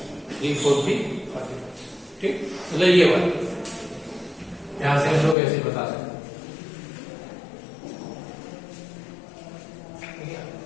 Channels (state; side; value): drops out; right; at 5.4 s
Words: 3 4P ठीक। मतलब ये वाला यहां से हम लोग ऐसे बता सकते हैं